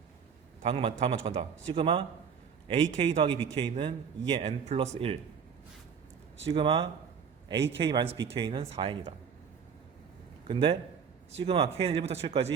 다음 맞춰간다. 시그마 ak 더하기 bk는 2의 n 플러스 1, 시그마 ak 마이너스 bk는 4n이다. 근데 시그마 k는 1부터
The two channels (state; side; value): quieter; left; 6.8 dB